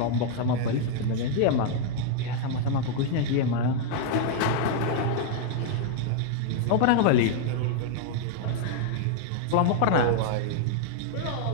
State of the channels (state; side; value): different; both; correlation 0.00